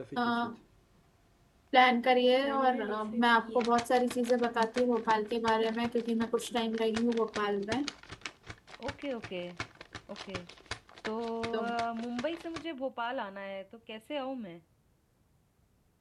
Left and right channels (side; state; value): both; identical; correlation 1.00